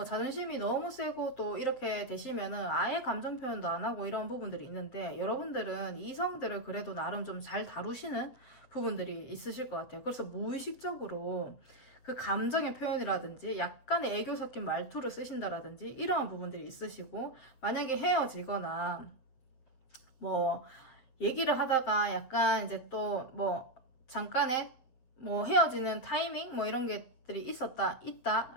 자존심이 너무 세고 또 이렇게 되시면은 아예 감정 표현도 안 하고 이런 부분들이 있는데, 여러분들은 이성들을 그래도 나름 좀 잘 다루시는 부분들이 있으실 것 같아요. 그래서 무의식적으로 그 감정의 표현이라든지 약간의 애교 섞인 말투를 쓰신다라든지 이러한 부분들이 있으시고, 만약에 헤어지거나 뭐 얘기를 하다가 약간 이제 또 뭐 잠깐의 뭐 헤어지는 타이밍 뭐 이런 것들이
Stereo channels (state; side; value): late; right; 7.9 ms